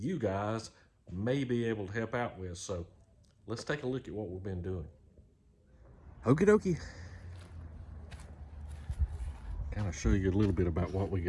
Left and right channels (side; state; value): both; identical; correlation 1.00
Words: guys may be able to help out with. So let's take a look at what we've been doing. Okie dokie. Kind of show you a little bit about what we